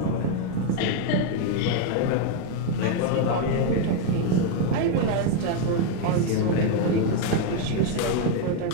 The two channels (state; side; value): different; both; correlation 0.01